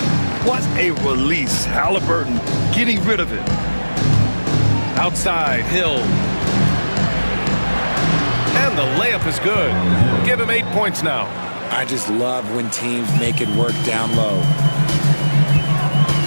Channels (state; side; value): inverted; both; correlation -1.00